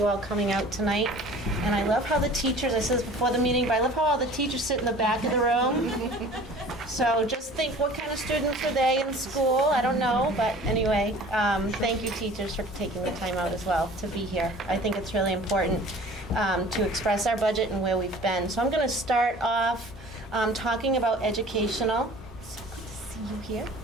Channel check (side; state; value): both; normal; correlation 0.45